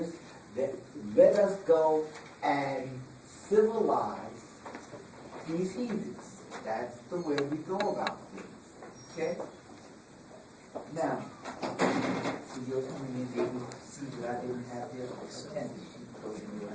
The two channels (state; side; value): identical; both; correlation 1.00